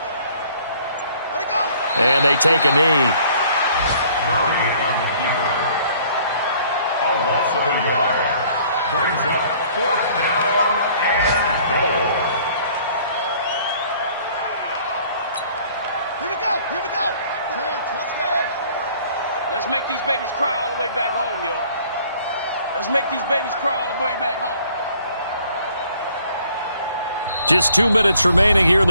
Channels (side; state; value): both; inverted; correlation -0.57